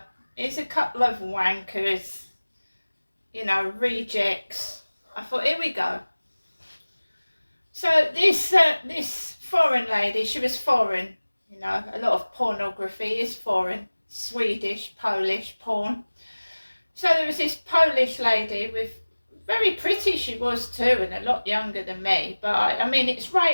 here's a couple of wankers, rejects. I thought, here we go. So this foreign lady, she was foreign, a lot of pornography is foreign, Swedish, Polish porn. So there was this Polish lady with, very pretty she was too, and a lot younger than me, but I mean, it's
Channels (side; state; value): both; inverted; correlation -1.00